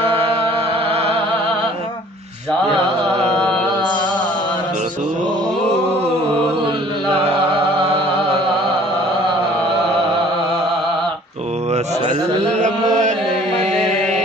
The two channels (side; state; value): both; normal; correlation 0.53